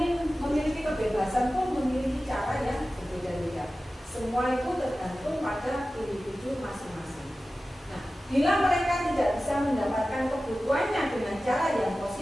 memiliki kebebasan pun memiliki cara yang berbeda-beda. Semua itu tergantung pada individu masing-masing. Nah, bila mereka tidak bisa mendapatkan kebutuhannya dengan cara yang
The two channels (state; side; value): normal; both; correlation 0.95